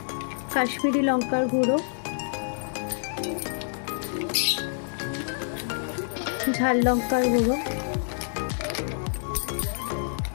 কাশ্মীরি লঙ্কার গুঁড়ো, ঝাল লঙ্কার গুঁড়ো,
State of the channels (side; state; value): right; silent; digital silence